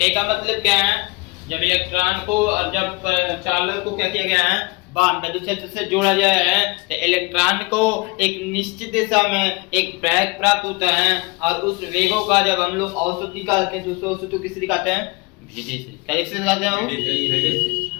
का मतलब क्या है, जब इलेक्ट्रॉन को और जब चालक को क्या किया गया है, विद्युत क्षेत्र से जोड़ा गया है तो इलेक्ट्रॉन को एक निश्चित दिशा में एक वेग प्राप्त होता है और उस वेगों का जब हम लोग औसत निकालते हैं तो उस औसत को किससे दिखाते हैं, भेदे से। क्या से दिखाते हैं, भेदे से।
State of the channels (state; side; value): quieter; right; 26.9 dB